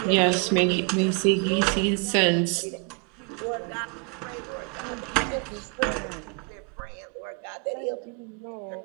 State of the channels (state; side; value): quieter; left; 34.9 dB